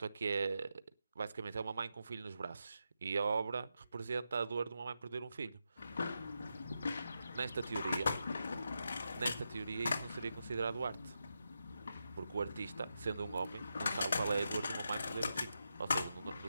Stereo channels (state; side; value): inverted; both; correlation -0.86